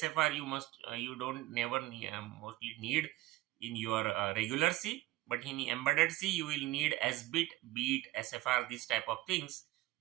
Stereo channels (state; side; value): quieter; left; 17.5 dB